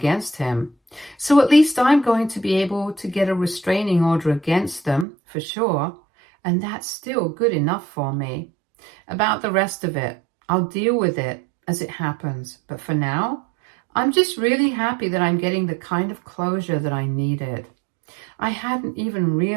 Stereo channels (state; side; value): drops out; left; at 5.1 s